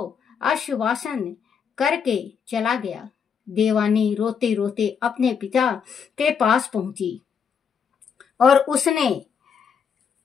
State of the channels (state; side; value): quieter; right; 6.9 dB